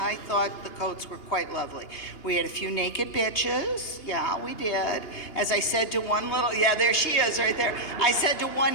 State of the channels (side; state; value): right; late; 3.2 ms